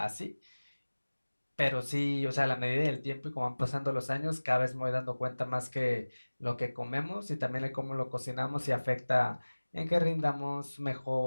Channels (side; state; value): both; inverted; correlation -1.00